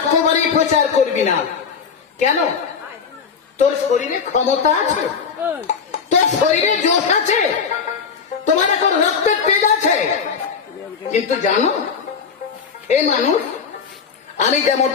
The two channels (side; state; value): right; quieter; 6.1 dB